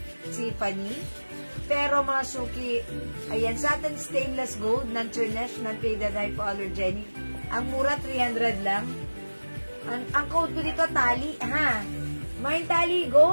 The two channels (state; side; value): inverted; both; correlation -1.00